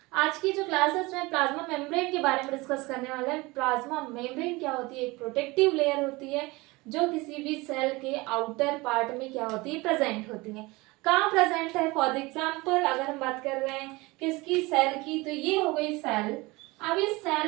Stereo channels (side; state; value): left; quieter; 22.9 dB